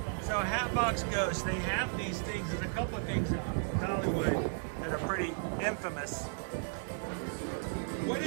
So Hatbox Ghost, they have these things. There's a couple of things at Hollywood that are pretty infamous. What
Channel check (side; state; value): left; silent; 55 dB below the other